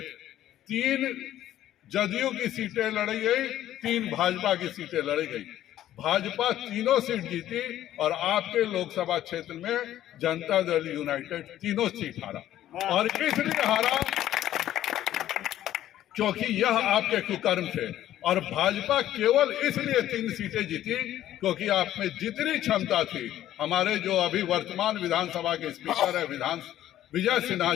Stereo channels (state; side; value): quieter; right; 12.7 dB